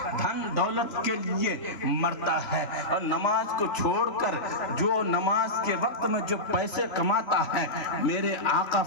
دھن دولت کے لیے مرتا ہے, اور نماز کو چھوڑ کر جو نماز کے وقت میں جو پیسے کماتا ہے, میرے آقا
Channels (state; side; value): late; right; 3.0 ms